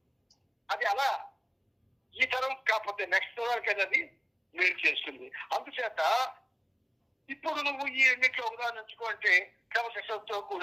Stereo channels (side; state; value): both; identical; correlation 1.00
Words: అది అలా ఈ తరం కాకపోతే నెక్స్ట్ తరానికి అది మేలు చేస్తుంది. అందుచేత ఇప్పుడు నువ్వు ఈ రెండింటిలో ఉదాహరణ ఎంచుకో అంటే క్రమశిక్షణతో